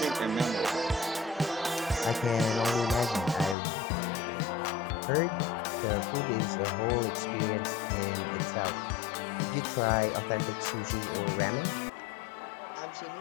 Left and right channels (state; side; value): drops out; right; at 3.6 s